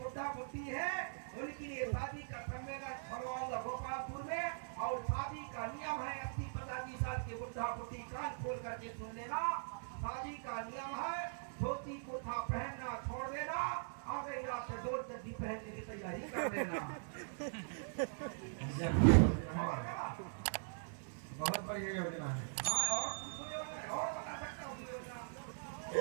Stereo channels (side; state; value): left; silent; digital silence